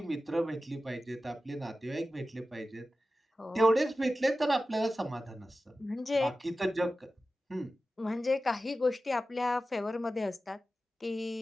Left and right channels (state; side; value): normal; both; correlation 0.94